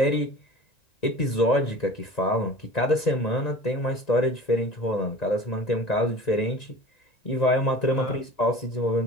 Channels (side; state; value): right; late; 1.9 ms